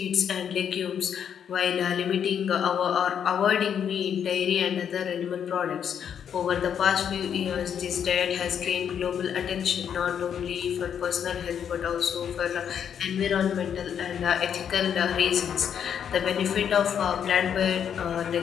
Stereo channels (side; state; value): right; quieter; 8.3 dB